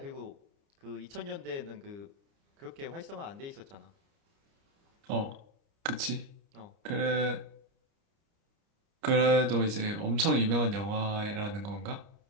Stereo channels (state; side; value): late; left; 29 ms